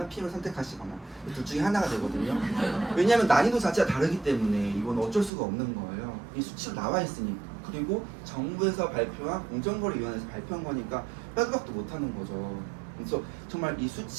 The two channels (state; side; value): drops out; left; at 5.3 s